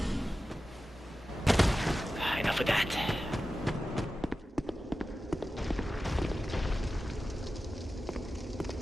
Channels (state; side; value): normal; both; correlation 0.94